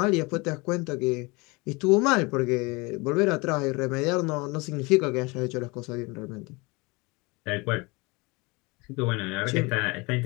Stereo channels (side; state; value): right; quieter; 26.0 dB